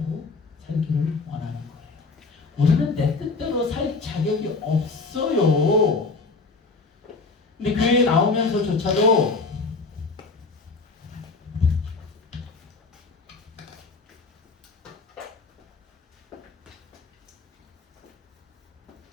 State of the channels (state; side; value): quieter; right; 4.0 dB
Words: 살기를 원하는 거예요. 우리는 내 뜻대로 살 자격이 없어요. 근데 교회에 나오면서조차도